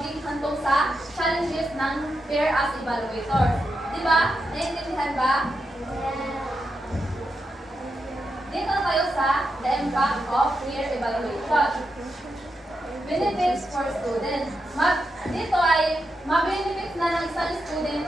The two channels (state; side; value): normal; both; correlation 0.86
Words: hantong sa challenges ng peer as evaluator. Diba? Naiintindihan ba? Dito tayo sa the impact of peer evaluation. Benefits for students. Dito ay ma-benefits na ng isang student